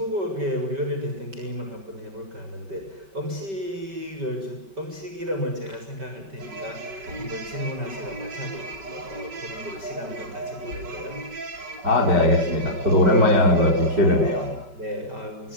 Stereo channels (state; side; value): late; left; 5.2 ms